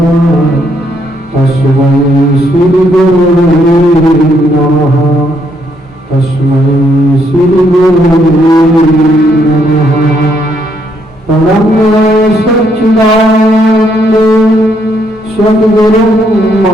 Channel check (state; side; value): normal; both; correlation 0.73